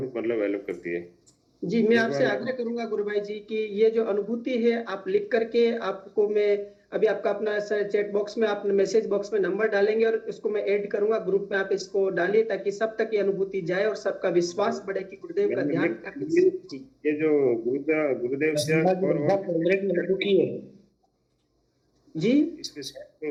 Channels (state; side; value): identical; both; correlation 1.00